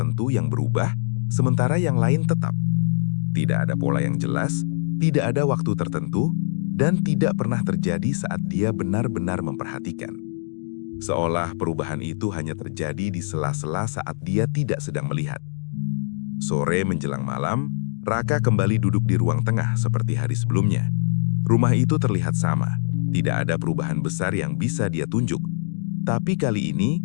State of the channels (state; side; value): silent; right; digital silence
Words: yang berubah, sementara yang lain tetap. Tidak ada pola yang jelas, tidak ada waktu tertentu, dan tidak pernah terjadi saat dia benar-benar memperhatikan. Seolah perubahan itu hanya terjadi di sela-sela saat dia tidak sedang melihat. Sore menjelang malam, Raka kembali duduk di ruang tengah seperti hari sebelumnya. Rumah itu terlihat sama, tidak ada perubahan besar yang bisa dia tunjuk. Tapi kali ini,